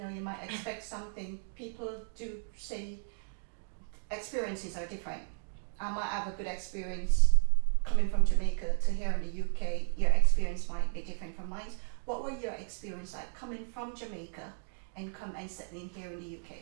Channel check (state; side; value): silent; left; digital silence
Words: know, you might expect something. People do say experiences are different. I might have a good experience coming from Jamaica to here in the UK. Your experience might be different from mine. What were your experience like coming from Jamaica and settling here in the